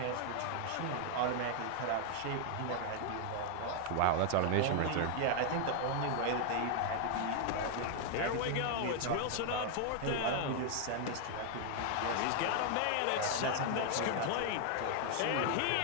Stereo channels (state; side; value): different; both; correlation 0.00